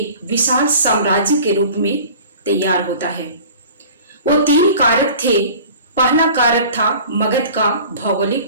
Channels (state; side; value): inverted; both; correlation -0.43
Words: विशाल साम्राज्य के रूप में तैयार होता है। वो 3 कारक थे। पहला कारक था मगध का